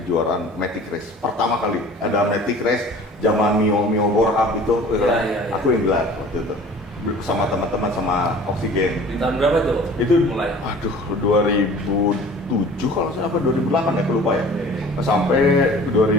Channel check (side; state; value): both; normal; correlation 0.45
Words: Matic Race. Pertama kali ada Matic Race zaman Mio Borhab itu, aku yang gelar waktu itu sama teman-teman sama Oksigen. Di tahun berapa tuh? Itu mulai. 2007 kalau saya apa 2008 ya, aku lupa ya. Sampai